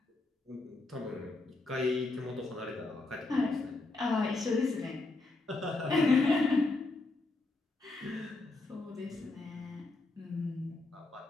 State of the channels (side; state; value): right; quieter; 3.2 dB